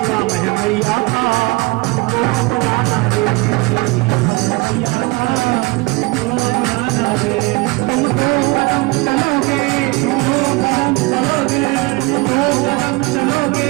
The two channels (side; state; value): left; quieter; 24.2 dB